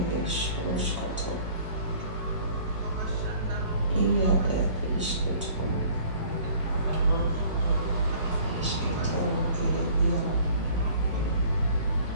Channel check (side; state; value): both; inverted; correlation -0.52